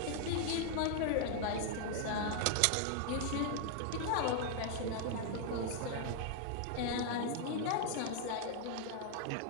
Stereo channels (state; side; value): different; both; correlation 0.00